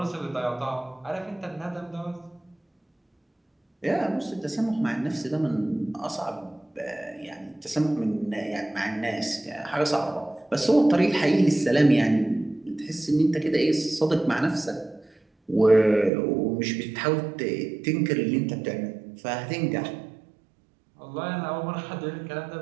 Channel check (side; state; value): left; drops out; at 16.1 s